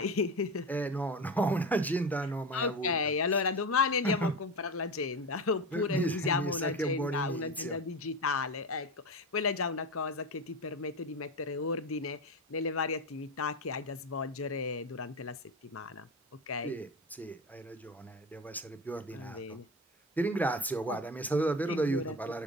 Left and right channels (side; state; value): both; normal; correlation 0.23